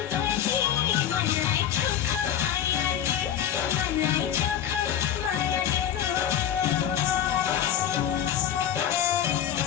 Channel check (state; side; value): quieter; right; 9.9 dB